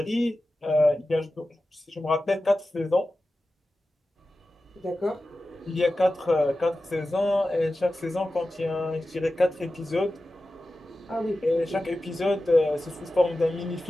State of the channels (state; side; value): normal; both; correlation 0.94